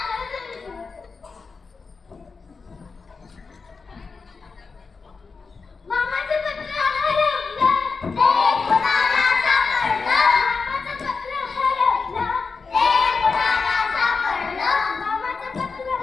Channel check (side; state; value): right; quieter; 4.7 dB